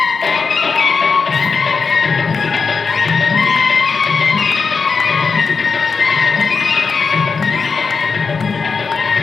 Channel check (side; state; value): right; quieter; 5.0 dB